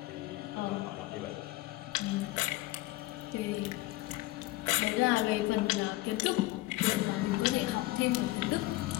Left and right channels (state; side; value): quieter; right; 18.8 dB